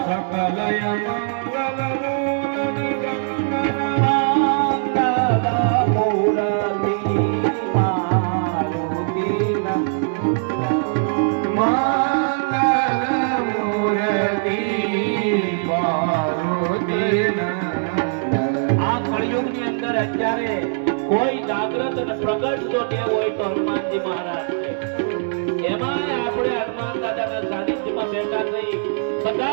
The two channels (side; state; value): left; silent; digital silence